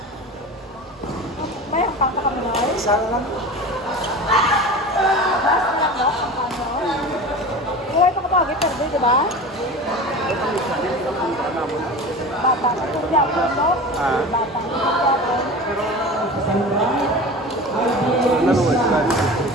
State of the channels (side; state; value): both; normal; correlation 0.33